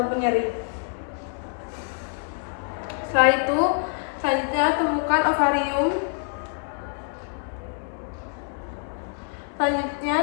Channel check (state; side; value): silent; right; 57 dB below the other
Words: nyeri. Setelah itu, selanjutnya temukan ovarium. Selanjutnya